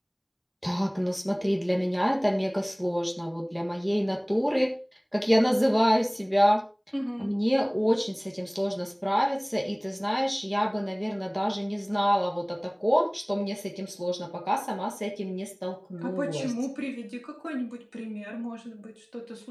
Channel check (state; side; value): identical; both; correlation 1.00